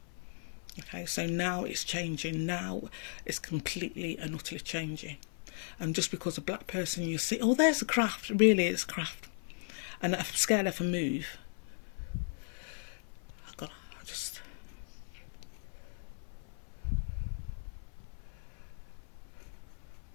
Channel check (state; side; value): silent; right; 53 dB below the other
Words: Okay, so now it's changing. Now it's completely and utterly changing. And just because a black person, you see, oh, there's a craft. Really, it's craft. And I'm scared if I move.